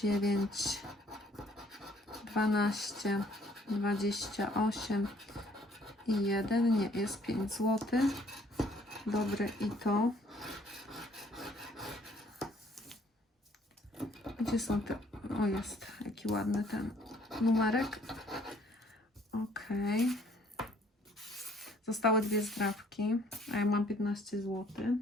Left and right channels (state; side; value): normal; both; correlation 0.61